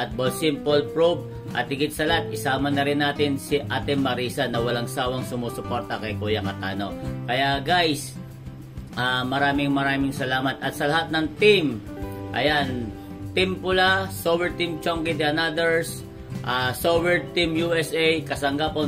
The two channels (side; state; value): both; identical; correlation 1.00